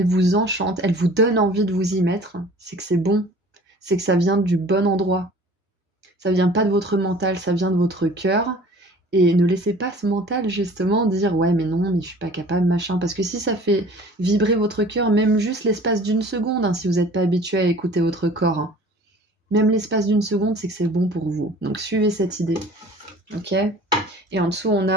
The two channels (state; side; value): normal; both; correlation 0.47